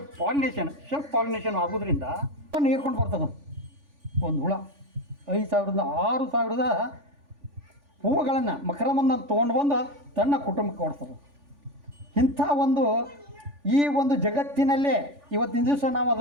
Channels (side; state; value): left; late; 3.5 ms